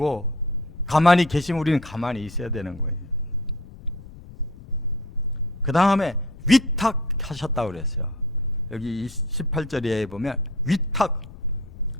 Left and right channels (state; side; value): noise; left; rumble, 17 dB below the sound